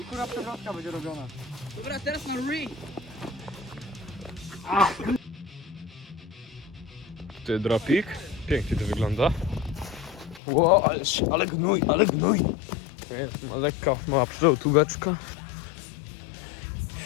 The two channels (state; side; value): drops out; right; at 10.4 s